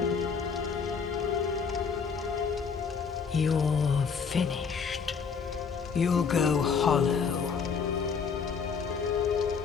You're finished. You'll go hollow.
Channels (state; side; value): quieter; right; 5.9 dB